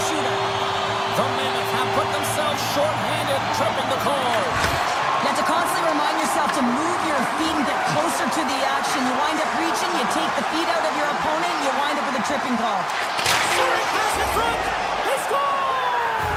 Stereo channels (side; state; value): both; identical; correlation 1.00